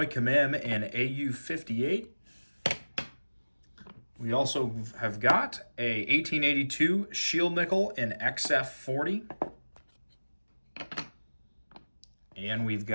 Commem in AU58. We also have got a 1882 Shield Nickel in XF40. And we've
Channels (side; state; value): both; inverted; correlation -1.00